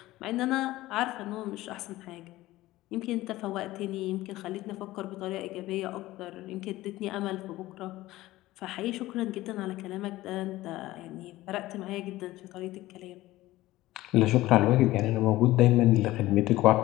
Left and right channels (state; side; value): quieter; right; 17.1 dB